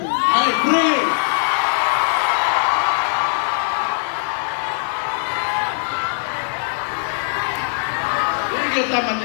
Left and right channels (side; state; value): right; silent; digital silence